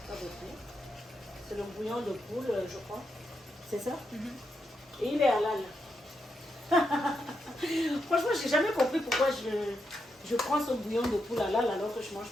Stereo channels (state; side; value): normal; both; correlation 0.83